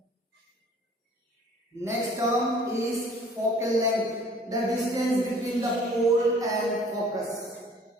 Next term is focal length, the distance between the pole and focus.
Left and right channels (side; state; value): both; normal; correlation 0.53